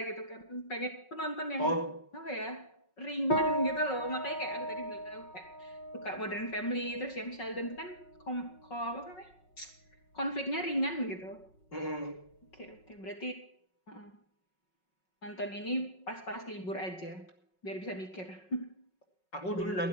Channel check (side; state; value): right; late; 5.4 ms